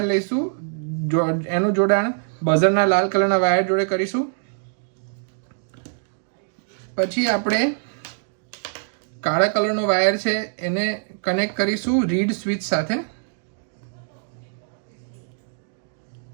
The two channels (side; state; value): left; silent; digital silence